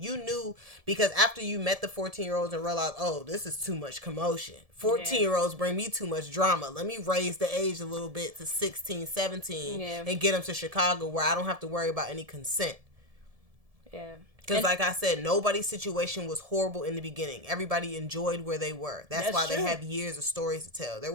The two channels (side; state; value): left; late; 1.7 ms